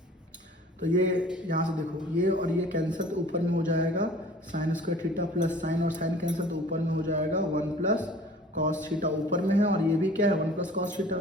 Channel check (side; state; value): both; normal; correlation 0.47